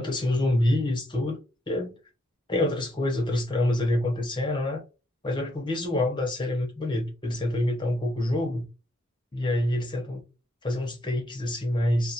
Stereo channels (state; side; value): normal; both; correlation 0.76